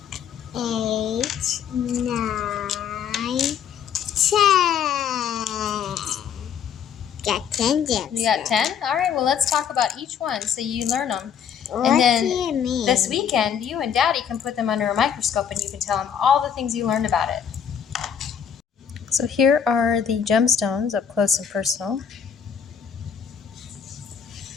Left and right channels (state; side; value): quieter; right; 7.8 dB